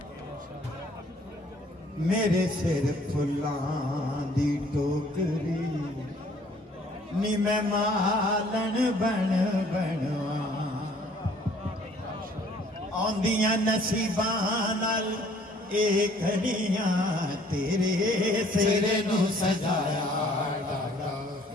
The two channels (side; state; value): both; normal; correlation 0.58